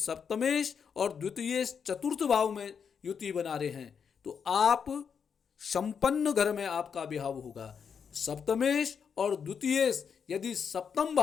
और द्वितीयेश चतुर्थ भाव में युति बना रहे हैं तो आप संपन्न घर में आपका विवाह होगा। सप्तमेश और द्वितीयेश यदि सप्तम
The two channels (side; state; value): right; quieter; 6.8 dB